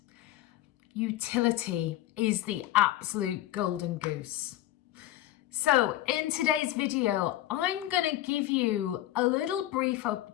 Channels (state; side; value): quieter; right; 14.3 dB